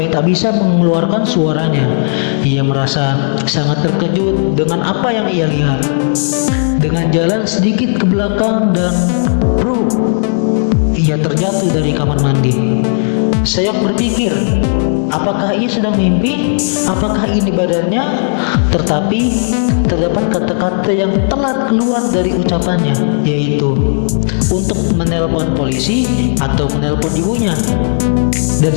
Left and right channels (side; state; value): right; silent; digital silence